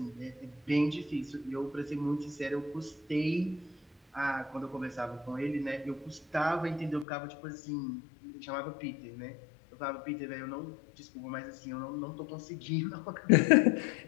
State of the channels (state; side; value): drops out; right; at 7.1 s